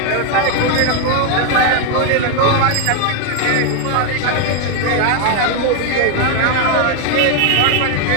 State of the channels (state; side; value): different; both; correlation 0.01